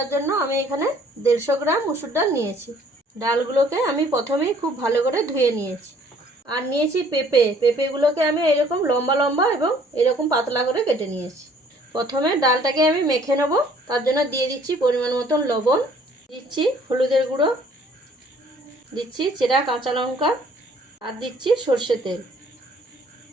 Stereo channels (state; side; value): normal; both; correlation 0.58